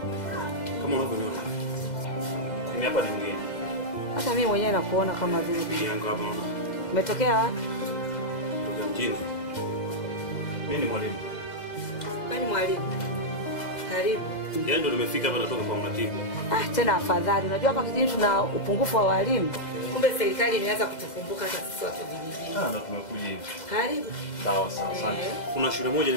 Kama unavyoniona. Mimi hapa ni mgeni. Hata mimi mwenyewe nakuona kama vile bibi yangu hapa unaona. Umetokea wapi? Kutoka mjini. Mimi ni mwalimu. Wewe ni mwalimu. Karibu. Yeye ndo nimefika hapa natoka kwa mratibu. Tena afadhali. Unajua hapa kijijini tuna upungufu wa walimu. Kumbe serikali imeanza kutukumbuka hata sisi watu vijijini. Ndo tumekuja hivi. Karibu. Sawa sawa, asante. Kuna shule moja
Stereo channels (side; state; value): right; late; 2.0 ms